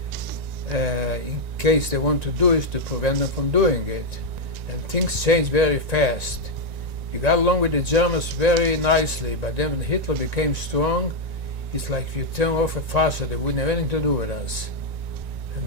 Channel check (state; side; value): late; left; 1.9 ms